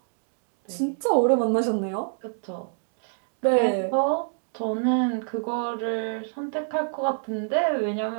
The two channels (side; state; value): left; silent; 61 dB below the other